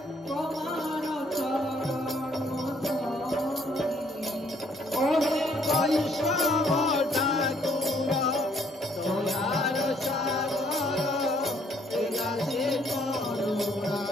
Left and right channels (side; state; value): both; normal; correlation 0.65